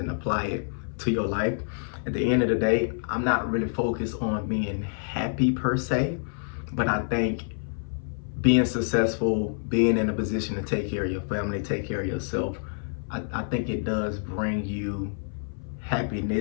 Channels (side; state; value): right; silent; 56 dB below the other